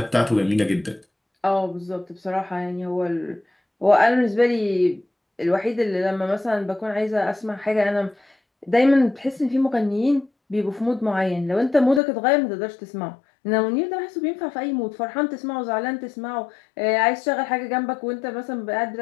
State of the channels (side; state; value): right; drops out; at 12.0 s